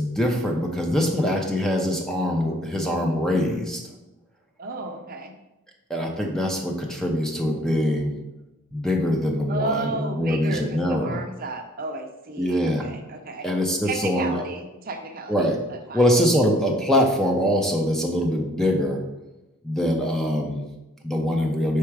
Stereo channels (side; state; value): both; normal; correlation 0.62